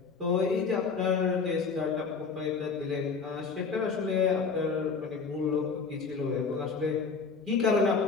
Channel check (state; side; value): quieter; right; 5.0 dB